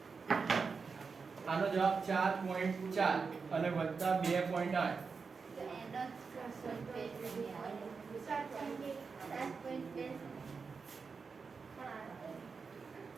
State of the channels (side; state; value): left; quieter; 5.1 dB